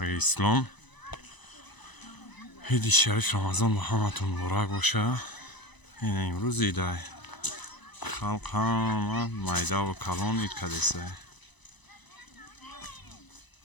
اسلام. عید شریف رمضان با همتون مبارک باشه. این امروز ایده خلق همه میده و کلان اید کدیسه.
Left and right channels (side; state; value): right; late; 1.0 ms